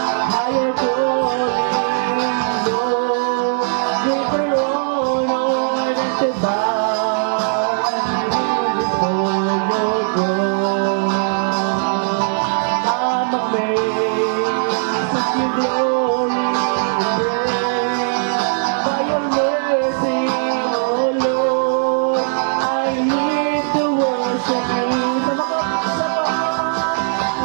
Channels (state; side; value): silent; left; 67 dB below the other